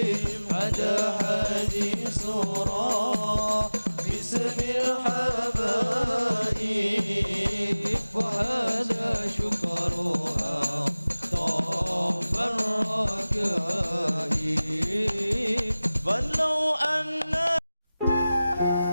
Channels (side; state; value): both; inverted; correlation -0.97